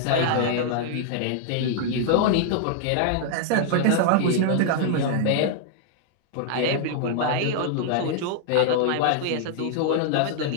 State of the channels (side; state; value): both; different; correlation -0.01